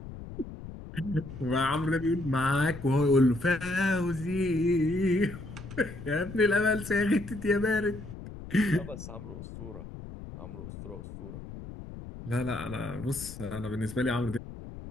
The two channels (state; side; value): noise; left; rumble, 12 dB below the sound